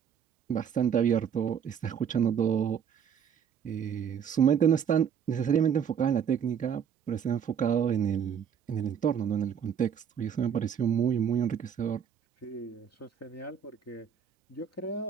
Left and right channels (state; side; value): quieter; left; 7.8 dB